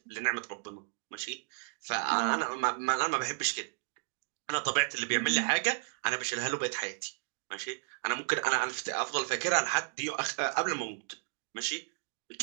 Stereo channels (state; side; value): silent; left; digital silence